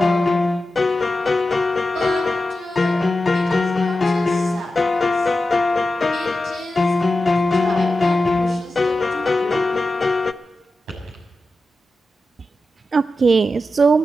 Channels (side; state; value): both; normal; correlation 0.92